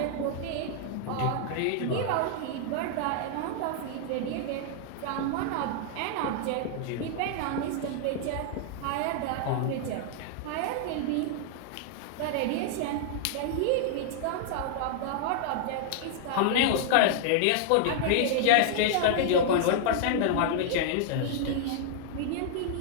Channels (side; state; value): both; different; correlation -0.01